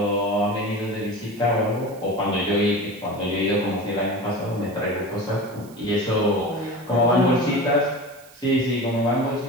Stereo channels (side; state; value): right; noise; hiss, 24 dB below the sound